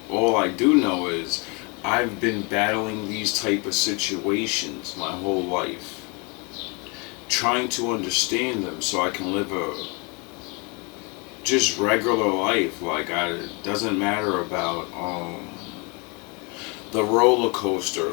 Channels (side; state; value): right; quieter; 30.8 dB